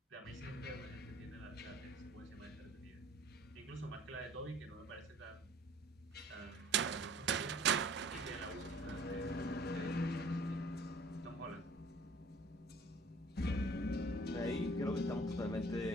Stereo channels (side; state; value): both; normal; correlation 0.52